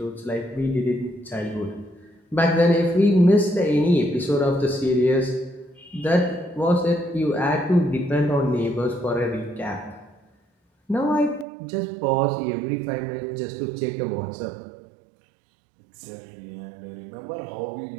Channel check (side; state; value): left; drops out; at 11.5 s